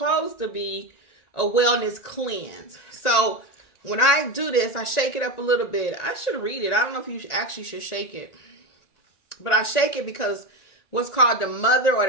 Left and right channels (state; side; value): late; right; 1.9 ms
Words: to be a wellness cleanse. So when I do this, I shake it up a little bit. I should read it. I don't know if you actually should shake it. But I shake it because what's called the mother or